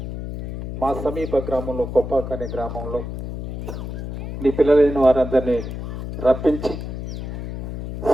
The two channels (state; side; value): noise; left; hum, 7 dB below the sound